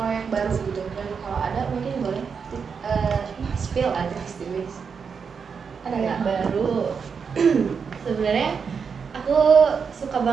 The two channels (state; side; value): quieter; left; 6.0 dB